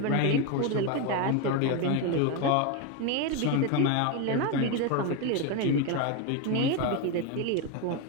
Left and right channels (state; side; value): different; both; correlation 0.02